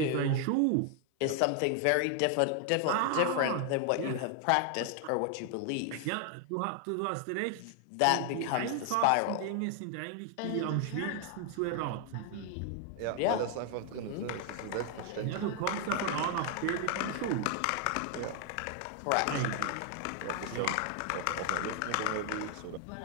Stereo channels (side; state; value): both; different; correlation 0.00